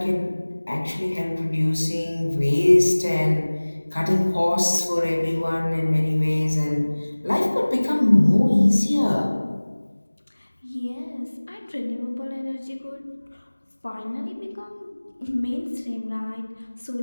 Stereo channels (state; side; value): inverted; both; correlation -1.00